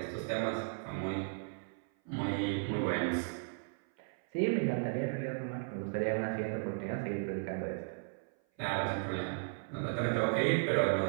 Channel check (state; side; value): silent; left; 54 dB below the other